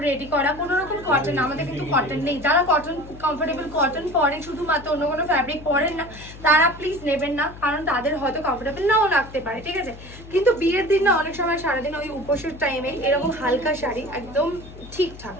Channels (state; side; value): noise; left; hum, 16 dB below the sound